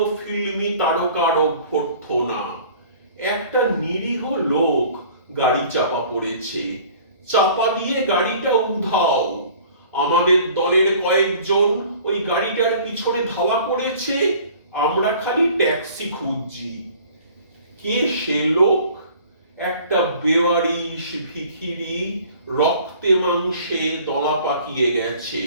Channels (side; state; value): both; inverted; correlation -0.49